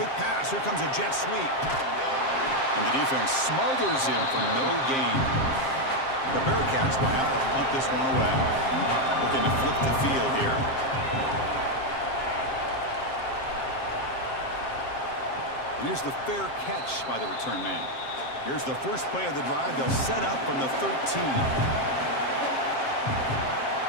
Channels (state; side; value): late; right; 7.6 ms